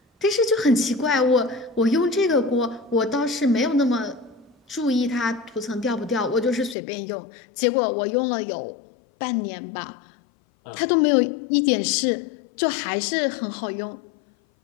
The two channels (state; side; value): drops out; right; at 6.8 s